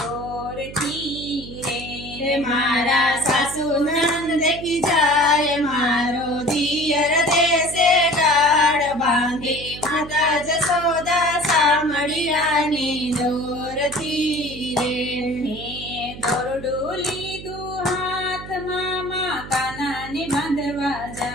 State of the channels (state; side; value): noise; right; hum, 13 dB below the sound